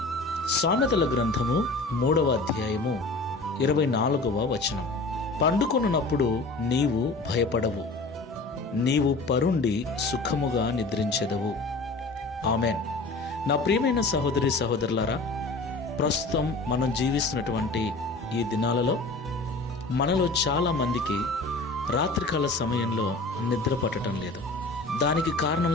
సామెతల గ్రంథము 3వ అధ్యాయము 24వ వచనం. పండుకొనున్నప్పుడు నీవు భయపడవు, నీవు పరుండి సుఖముగా నిద్రించెదవు. ఆమెన్. నా ప్రియమైన సహోదరి సహోదరులారా, ప్రస్తుతం మనం జీవిస్తున్నటువంటి ఈ దినాలలో మనలో చాలా మందికి రాత్రికాల సమయంలో నిద్ర పట్టడం లేదు. దానికి కారణం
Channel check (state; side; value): quieter; right; 3.3 dB